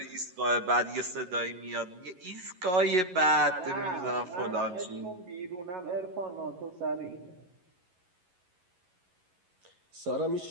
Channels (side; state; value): left; late; 11 ms